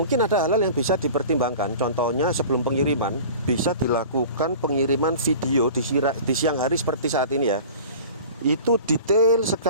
ada hal-hal yang bisa dipertimbangkan. Contohnya sebelum pengiriman bisa dilakukan pengiriman video di siang hari seperti saat ini ya. Itu detail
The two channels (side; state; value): both; inverted; correlation -0.39